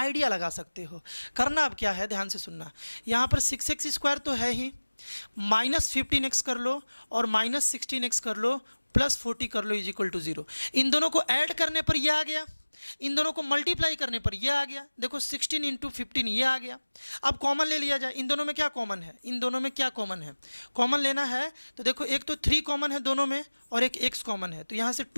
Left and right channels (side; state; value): both; inverted; correlation -1.00